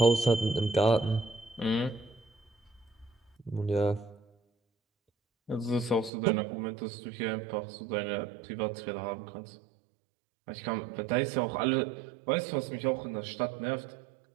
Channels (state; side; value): drops out; left; at 6.1 s